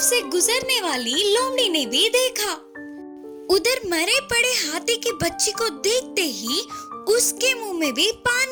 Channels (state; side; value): identical; both; correlation 1.00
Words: से गुजरने वाली लोमड़ी ने भी देखा। उधर मरे पड़े हाथी की बच्ची को देखते ही उसके मुंह में भी